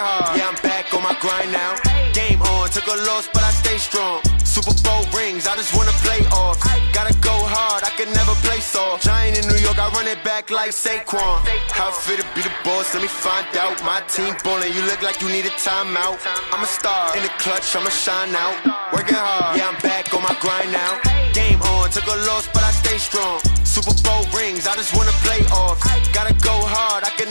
yeah, I'm back on my grind now. Game on, took a loss, but I stay strong. Super Bowl rings, I just wanna play off. Gotta go hard, I can never play soft. Giant in New York, I run it back like Saquon. How fit to be the boss, let me find out. My team ballin', you look like you need a timeout. I'm a star in the clutch, I'ma shine out. Working hard, yeah, I'm back on my grind now. Game on, took a loss, but I stay strong. Super Bowl rings, I just wanna play off. Gotta go hard, I can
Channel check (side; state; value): both; inverted; correlation -1.00